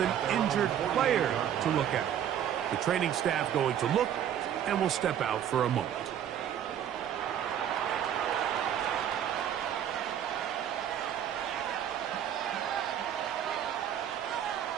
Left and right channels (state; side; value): quieter; left; 9.9 dB